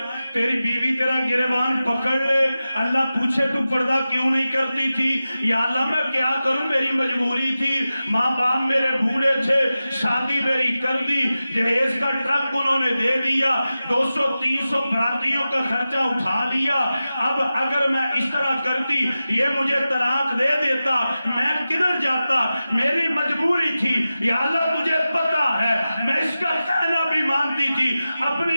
تیری بیوی تیرا گریبان پکڑ لے، اللہ پوچھے تو پردہ کیوں نہیں کرتی تھی؟ یا اللہ میں کیا کروں، میری مجبوری تھی، ماں باپ میرے بوڑھے تھے، شادی میری کر دی، جہیز کا ٹرک انہوں نے دے دیا، 200-300 براتیوں کا خرچہ اٹھا لیا، اب اگر میں اس طرح کرتی یہ مجھے طلاق دے دیتا، میں کدھر جاتا، میری مجبوری تھی، یا اللہ تجھے پتا ہے میں اس کا کہنا بھی مانتی تھی،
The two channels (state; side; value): inverted; both; correlation -0.94